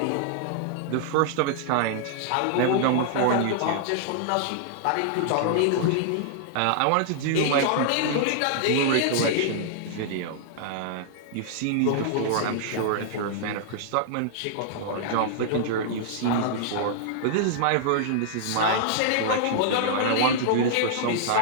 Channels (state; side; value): different; both; correlation -0.01